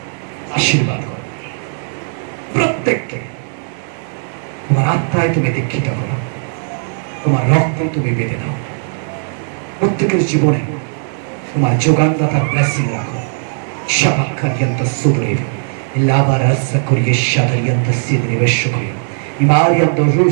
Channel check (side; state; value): left; silent; 64 dB below the other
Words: আশীর্বাদ করো প্রত্যেককে, তোমার আত্মায় তুমি দীক্ষিত করো, তোমার রক্ত তুমি বেঁধে দাও। প্রত্যেকের জীবনে তোমার যোগানদাতার ব্লেসিং রাখো। শাবাক্কারিয়ান্ত সুদরেব লাবারাসা করিয়ে শাদারিয়ান্ত সিদরে বেশকরিয়া ইমারিয়ান্ত